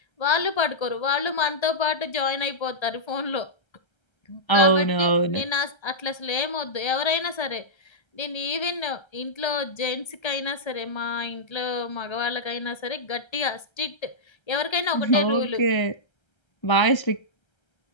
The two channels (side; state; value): right; late; 1.3 ms